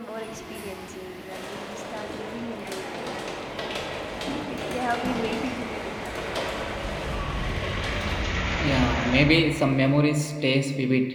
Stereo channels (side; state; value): both; identical; correlation 1.00